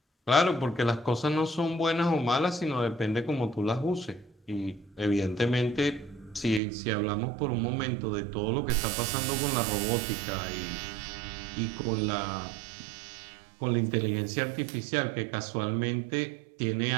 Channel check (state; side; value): drops out; left; at 6.6 s